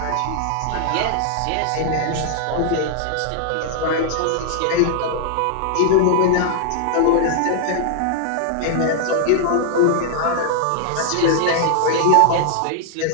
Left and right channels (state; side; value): different; both; correlation -0.01